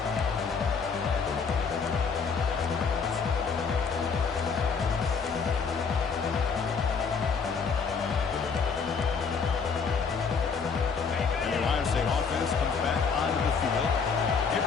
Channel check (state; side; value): quieter; right; 5.5 dB